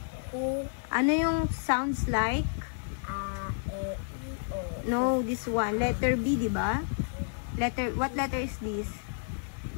Ano yung sounds like? E, I, O. No, this one. Letter B, di ba? What letter is this?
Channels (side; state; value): right; silent; 57 dB below the other